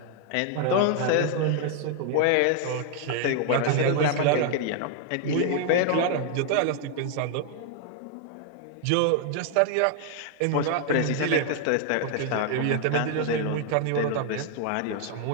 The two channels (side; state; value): both; different; correlation 0.00